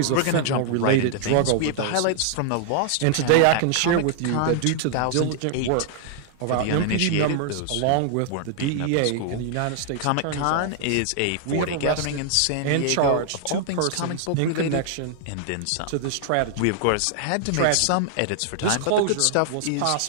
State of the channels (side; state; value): both; different; correlation 0.00